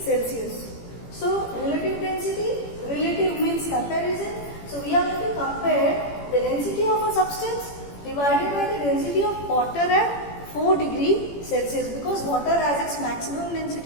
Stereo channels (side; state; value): right; late; 18 ms